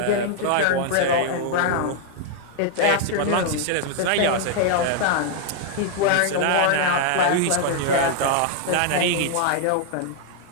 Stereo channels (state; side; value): different; both; correlation 0.00